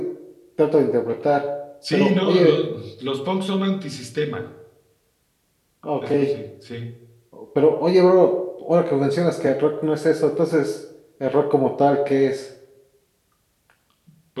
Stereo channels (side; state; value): both; identical; correlation 1.00